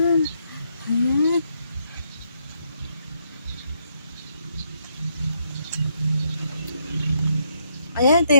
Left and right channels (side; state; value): both; inverted; correlation -0.75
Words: ayan. Ayan, ito